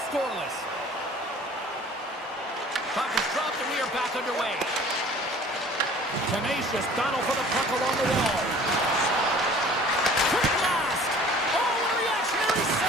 scoreless. Puck is dropped and we are back underway. Tenacious battle for the puck along the wall. Quick blast! Oh, a reactionary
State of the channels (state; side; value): normal; both; correlation 0.48